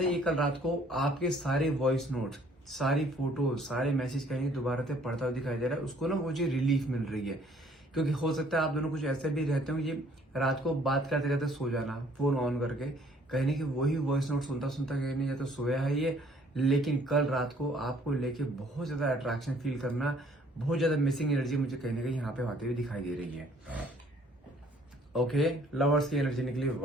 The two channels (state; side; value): normal; both; correlation 0.60